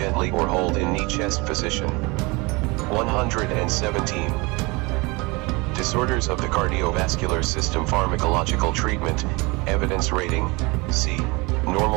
or hold in knee-chest position. 117. Disorders of the cardiovascular system: pharmacological treatment, evidence rating: C.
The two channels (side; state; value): left; quieter; 25.9 dB